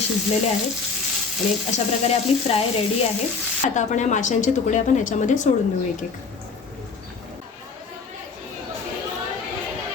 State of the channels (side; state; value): right; quieter; 4.8 dB